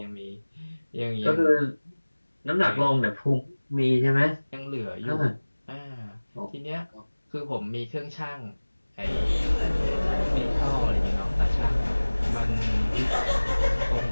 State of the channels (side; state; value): both; inverted; correlation -1.00